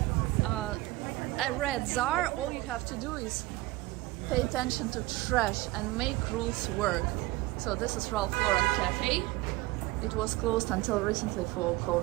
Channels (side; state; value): left; quieter; 19.7 dB